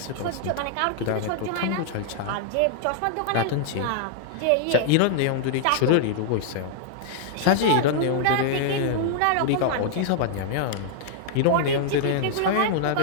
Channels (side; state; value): both; different; correlation -0.01